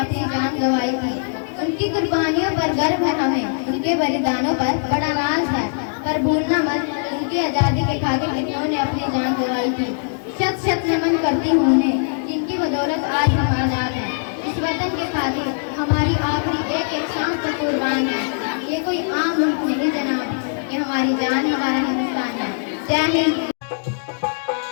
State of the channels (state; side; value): silent; right; digital silence